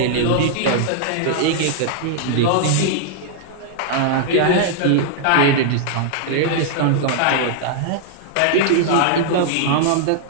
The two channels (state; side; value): different; both; correlation -0.01